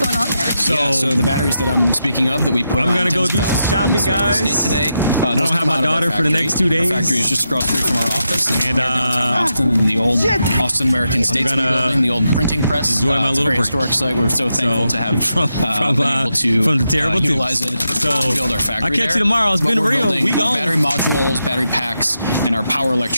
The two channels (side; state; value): both; inverted; correlation -0.85